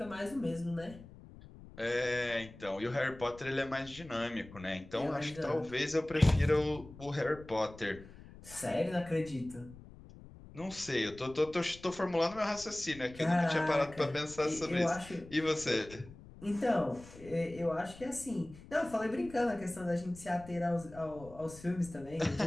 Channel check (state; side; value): noise; left; rumble, 18 dB below the sound